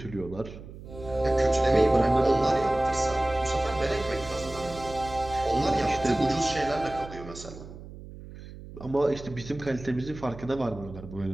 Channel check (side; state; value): right; noise; hum, 15 dB below the sound